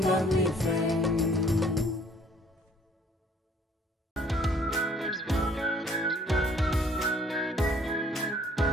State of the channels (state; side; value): normal; both; correlation 0.58